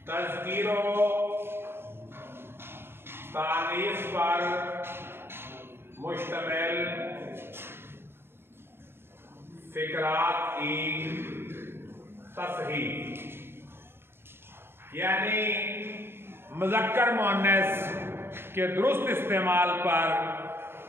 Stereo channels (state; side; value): late; left; 0.11 ms